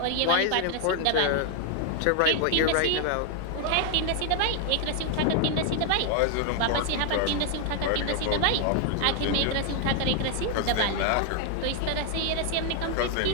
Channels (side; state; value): both; different; correlation 0.00